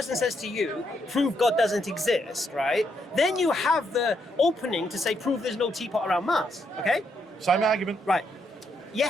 says to you, "Prove God doesn't exist," right? Then you have the opening to say, "Prove there's no teapot around Mars." Okay? Same argument. Right.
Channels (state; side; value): normal; both; correlation 0.77